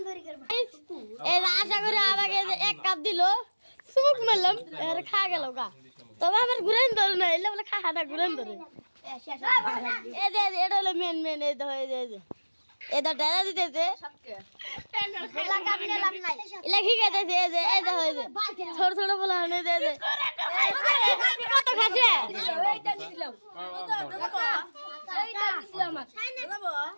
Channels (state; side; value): inverted; both; correlation -1.00